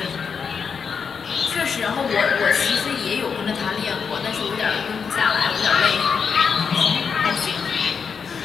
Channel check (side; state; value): right; quieter; 6.1 dB